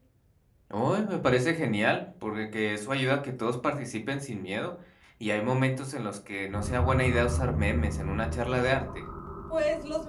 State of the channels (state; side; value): identical; both; correlation 1.00